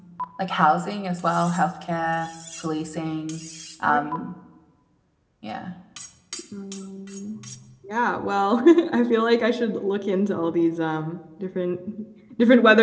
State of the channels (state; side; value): identical; both; correlation 1.00